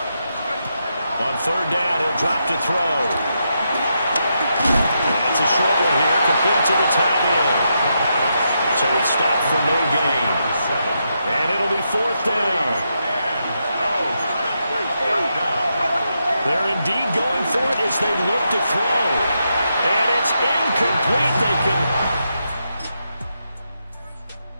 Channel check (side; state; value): both; inverted; correlation -0.83